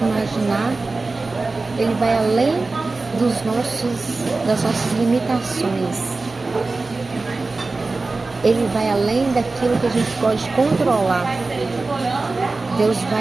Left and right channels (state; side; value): quieter; left; 3.6 dB